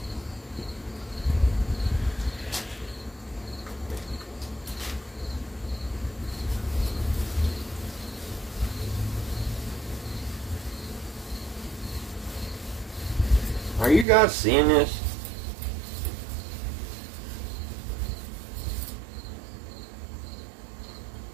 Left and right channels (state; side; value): drops out; left; at 14.1 s